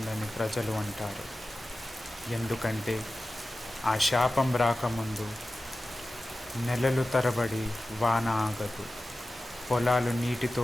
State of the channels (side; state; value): both; normal; correlation 0.95